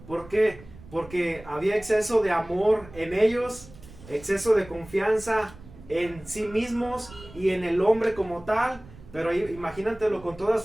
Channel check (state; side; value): noise; right; rumble, 19 dB below the sound